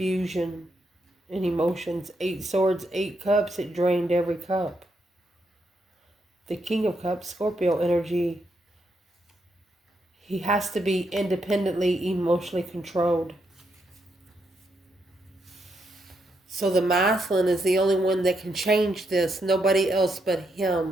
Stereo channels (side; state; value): both; normal; correlation 0.79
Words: and emotions. 8 swords, 8 cups. It drained every cup. The King of Cups, Scorpio energy. He has to be independently emotionally controlled. So the masculine is the only one that can change this. Nobody else but